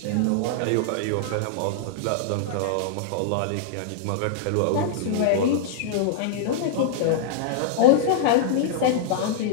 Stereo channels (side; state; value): both; different; correlation -0.02